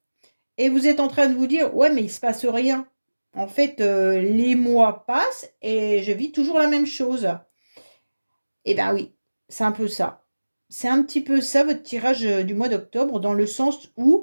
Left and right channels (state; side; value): inverted; both; correlation -1.00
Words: et vous êtes en train de vous dire: «Ouais, mais il se passe rien». En fait, les mois passent et je vis toujours la même chose. Eh ben oui, c'est un peu ça. C'est un petit peu ça votre tirage, du mois d'octobre, dans le sens